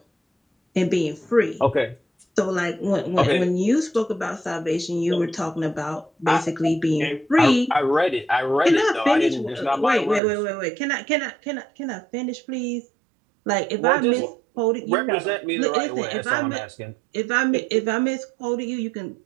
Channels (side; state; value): left; drops out; at 10.2 s